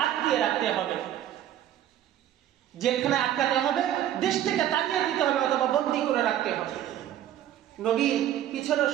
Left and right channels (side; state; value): left; quieter; 11.6 dB